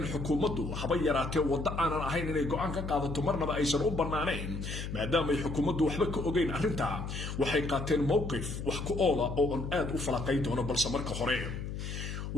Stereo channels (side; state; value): left; noise; hum, 6 dB below the sound